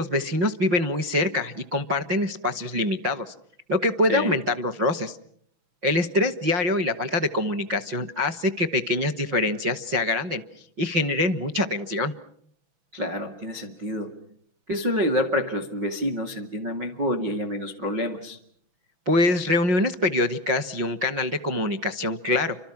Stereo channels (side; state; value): left; late; 6.0 ms